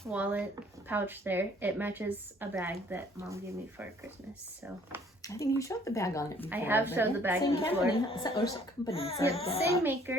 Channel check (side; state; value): both; normal; correlation 0.59